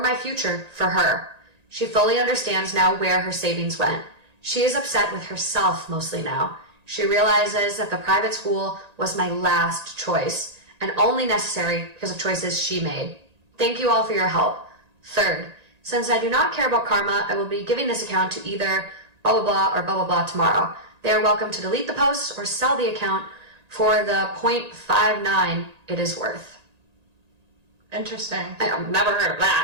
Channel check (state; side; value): late; left; 1.8 ms